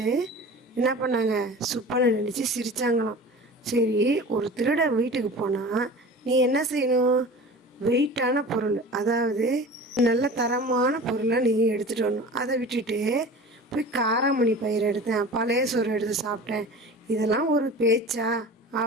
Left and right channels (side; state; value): both; normal; correlation 0.38